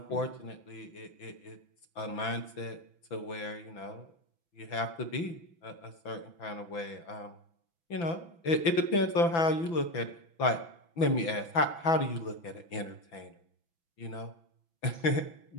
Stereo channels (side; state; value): right; late; 6.0 ms